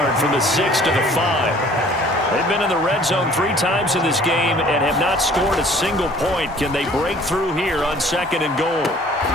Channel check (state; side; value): normal; both; correlation 0.53